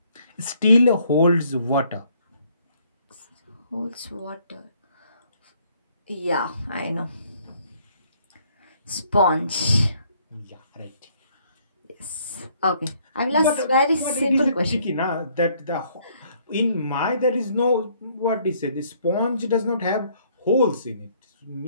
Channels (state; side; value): inverted; both; correlation -0.65